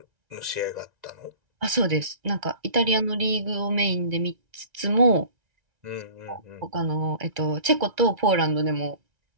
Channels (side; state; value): left; late; 1.9 ms